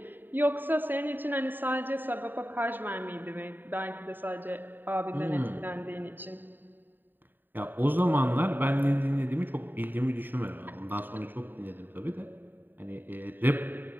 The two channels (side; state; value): left; late; 0.092 ms